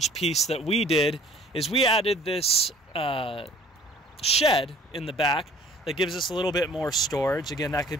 piece that we did is we added this shed in the back that gives us a little bit more storage. Again, that could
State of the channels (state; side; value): normal; both; correlation 0.52